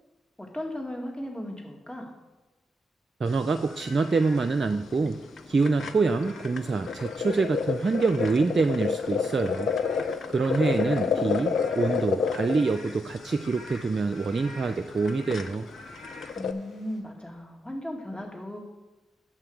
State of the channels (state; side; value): normal; both; correlation 0.82